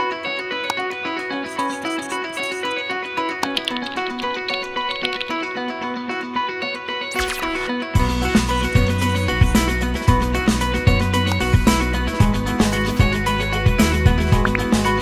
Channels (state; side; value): identical; both; correlation 1.00